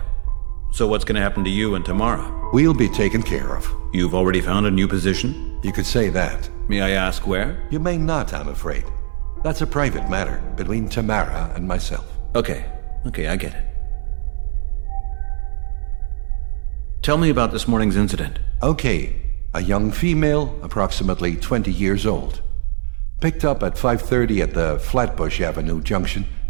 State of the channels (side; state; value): left; silent; 58 dB below the other